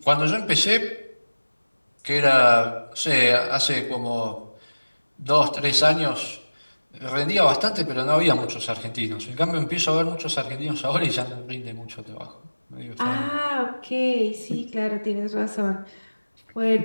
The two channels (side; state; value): both; inverted; correlation -1.00